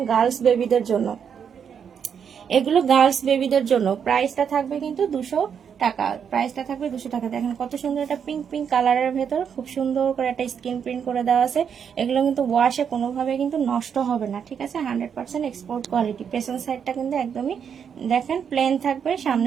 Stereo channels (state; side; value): quieter; left; 7.5 dB